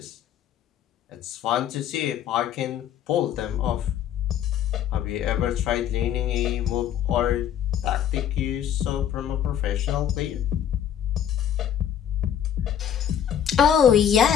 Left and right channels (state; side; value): quieter; right; 9.6 dB